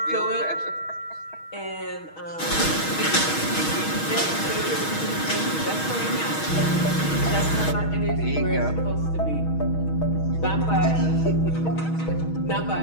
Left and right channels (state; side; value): late; right; 6.3 ms